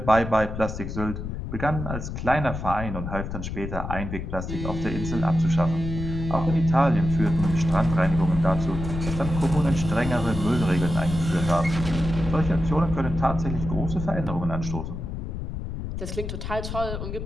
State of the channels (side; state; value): left; noise; rumble, 6 dB below the sound